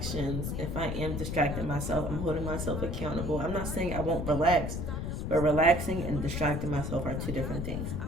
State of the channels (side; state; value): left; noise; rumble, 3 dB below the sound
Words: If I am distracting myself, I'm holding myself accountable. I'm not saying I won't relax, but relaxing and distracting myself are two different things.